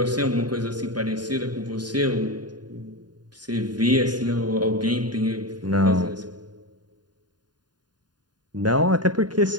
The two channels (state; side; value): late; left; 0.70 ms